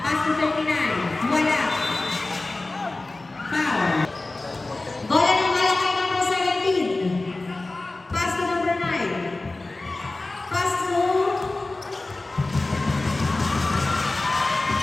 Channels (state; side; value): quieter; right; 3.1 dB